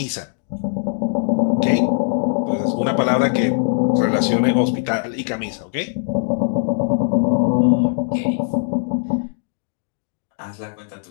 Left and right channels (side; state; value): right; silent; 65 dB below the other